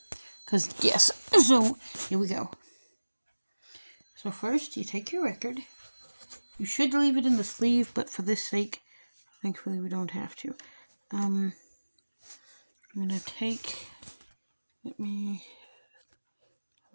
Because, yes. So, here we go. So first, you take your record. You should leave it in the sleeve, but for this sake, thankfully we don't have to. I'm gonna take... We'll be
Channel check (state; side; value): inverted; both; correlation -1.00